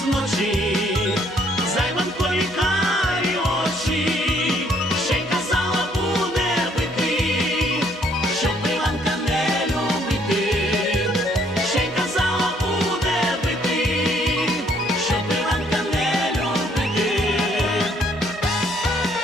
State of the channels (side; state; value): both; normal; correlation 0.66